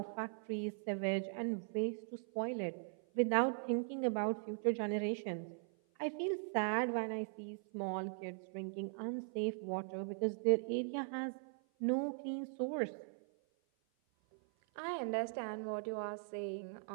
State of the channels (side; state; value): left; silent; 51 dB below the other